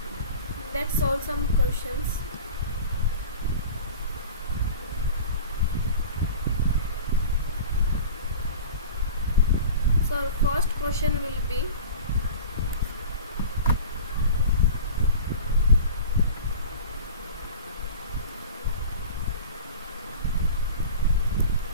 let's solve some questions. So our first question will be,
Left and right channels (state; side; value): inverted; both; correlation -0.37